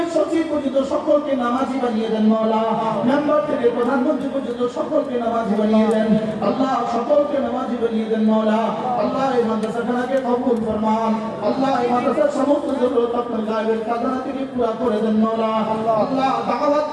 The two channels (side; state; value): both; identical; correlation 1.00